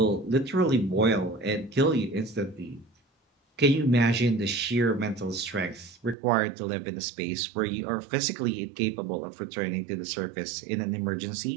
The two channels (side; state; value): left; drops out; at 6.2 s